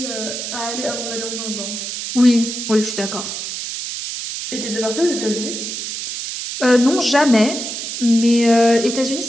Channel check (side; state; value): right; noise; hiss, 6 dB below the sound